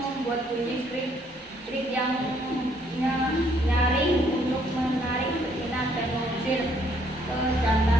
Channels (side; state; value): both; normal; correlation 0.67